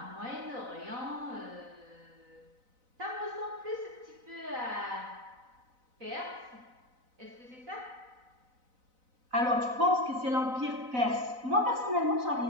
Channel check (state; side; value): late; left; 4.0 ms